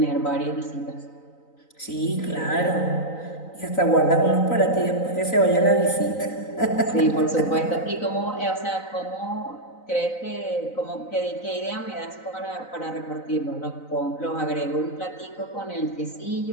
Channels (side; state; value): right; late; 3.9 ms